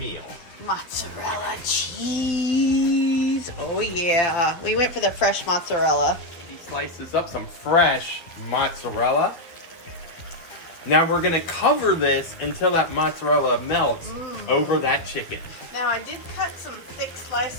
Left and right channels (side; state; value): right; late; 12 ms